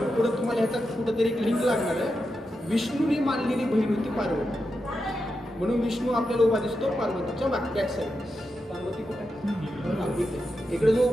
तुम्हाला ह्याचा कुठंतरी एक लिंक लागणार आहे. विष्णूने मानलेली बहीण होती पार्वती, म्हणून विष्णू आपल्याला उभा दिसतो पार्वतीच्या बॅक साईड. पार्वती कुठे? इकडे जो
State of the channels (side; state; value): both; normal; correlation 0.88